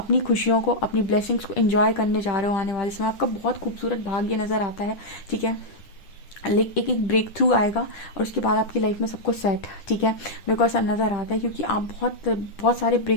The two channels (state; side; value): late; right; 10 ms